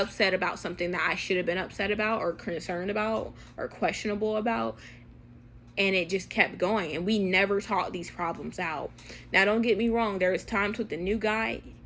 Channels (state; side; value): identical; both; correlation 1.00